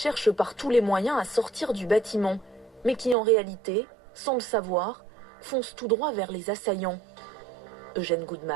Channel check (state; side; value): drops out; left; at 3.2 s